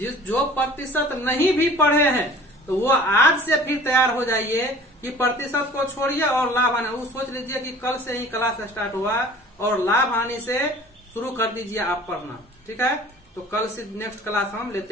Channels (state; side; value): normal; both; correlation 0.46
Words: जो प्रतिशत नहीं भी पढ़े हैं तो वो आज से फिर तैयार हो जाइए कि प्रतिशत को छोड़िए और लाभ हानि, वो सोच लीजिए कि कल से ही क्लास स्टार्ट हुआ और लाभ हानि से शुरू कर दीजिए आप पढ़ना। ठीक है, तो कल से नेक्स्ट क्लास हम